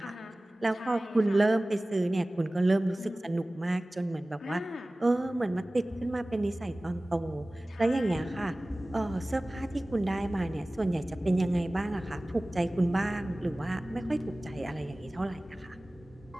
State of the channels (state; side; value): normal; both; correlation 0.98